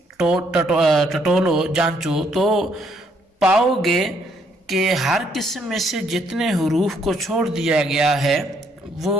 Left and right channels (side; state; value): both; normal; correlation 0.70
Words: ٹٹولو جانچو تو پاؤ گے کہ ہر قسم میں سے جتنے حروف کو چھوڑ دیا گیا ہے وہ